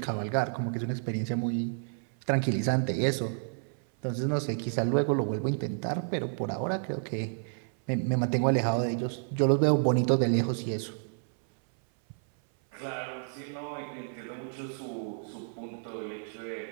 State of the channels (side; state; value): left; silent; 58 dB below the other